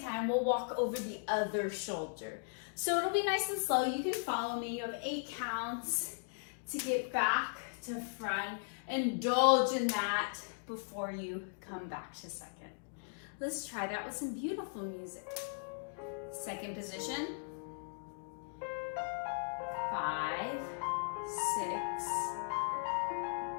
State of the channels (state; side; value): silent; right; digital silence